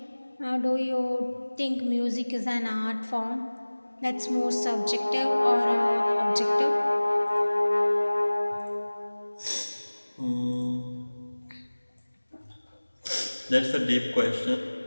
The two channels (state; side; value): inverted; both; correlation -1.00